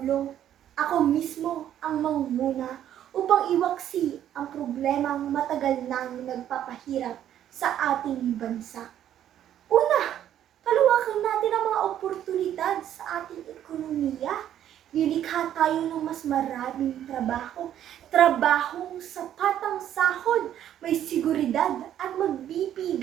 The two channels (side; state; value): left; quieter; 10.9 dB